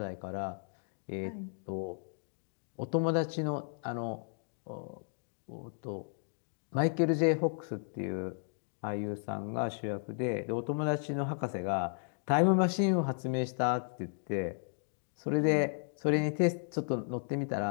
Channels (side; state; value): right; silent; digital silence